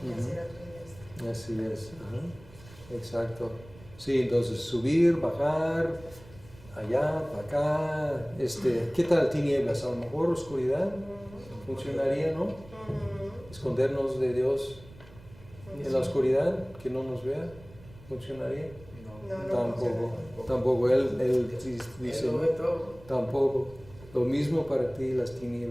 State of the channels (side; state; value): right; noise; rumble, 21 dB below the sound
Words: y hacer a tu diestra. Así es. Ajá. Exacto. Sí, entonces subir, bajar, allá, para acá. ¿Qué tal tinieblas? A lo mejor oscuridad funcionaría, ¿no? Escondernos de Dios en la oscuridad, que no nos vea, funcionaría. No, Tampoco. Él dice, Él lo ve todo. tampoco. Lo mismo para ti las